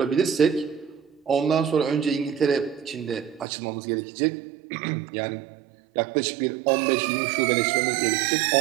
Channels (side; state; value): left; drops out; at 3.5 s